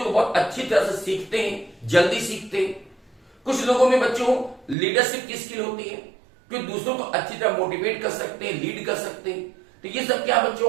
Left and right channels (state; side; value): drops out; left; at 4.8 s